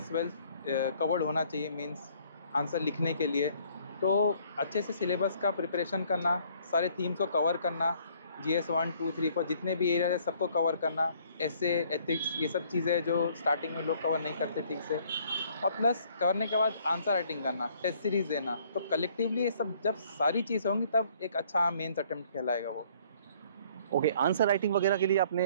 वेल कवर्ड होना चाहिए मीन्स आंसर लिखने के लिए। तो अच्छे से सिलेबस का प्रिपरेशन करना, सारे थीम्स को कवर करना, GS 1 2 3 4 जितने भी एरिया है सबको कवर करना, ऐसे एथिक्स ये सब चीज़ें जो स्टार्टिंग में लोग कवर नहीं करते ठीक से, और प्लस करने के बाद आंसर राइटिंग करना, टेस्ट सीरीज देना। तो कलेक्टिवली ये सब जब सारी चीज़ें होंगी तब एक अच्छा मेंस अटेम्प्ट कहलाएगा वो। ओके, आंसर राइटिंग वगैरह के लिए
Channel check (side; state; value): both; inverted; correlation -0.61